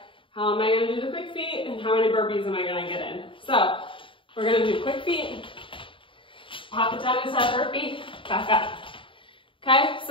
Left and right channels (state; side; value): late; right; 0.25 ms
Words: how am I gonna do the quick feet and how many burpees am I gonna get in. So we're gonna do quick feet, pop it down into that burpee, back up. Okay,